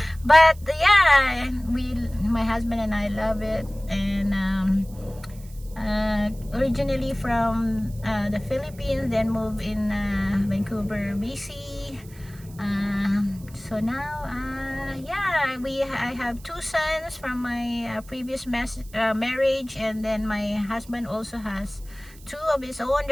But yeah, my husband and I love it. And originally from the Philippines, then moved in Vancouver, BC. So now, I have two sons from my previous marriage, and then my husband also has two of his own.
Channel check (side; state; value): right; noise; hiss, 23 dB below the sound